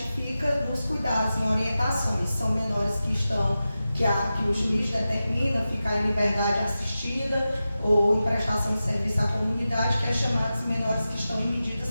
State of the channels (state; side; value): inverted; both; correlation -0.93